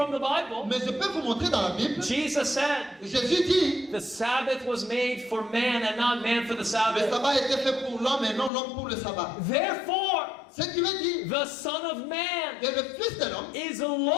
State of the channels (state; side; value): drops out; right; at 8.5 s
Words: the Bible. Mais je peux vous montrer dans la Bible. Jesus said, Jésus dit, the Sabbath was made for man and not man for the le Sabbath. sabbat a été fait pour l'homme et non l'homme pour le sabbat. Therefore, Ce qui veut dire the Son of Man que le Fils de l'homme is the